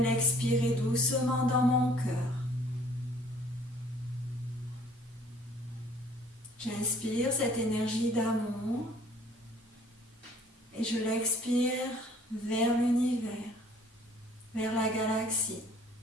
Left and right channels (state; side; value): normal; both; correlation 0.56